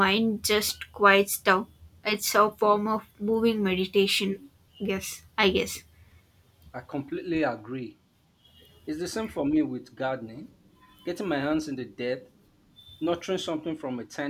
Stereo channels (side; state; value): both; identical; correlation 1.00